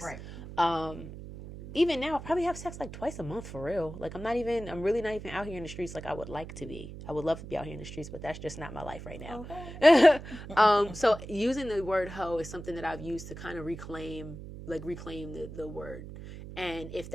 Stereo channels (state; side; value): noise; right; hum, 12 dB below the sound